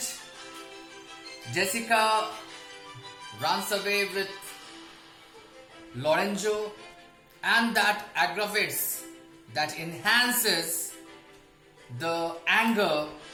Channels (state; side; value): identical; both; correlation 1.00